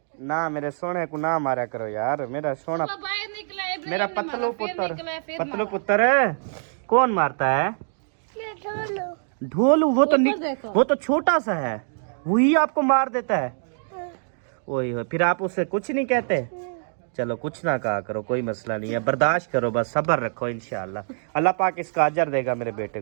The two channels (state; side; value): silent; left; digital silence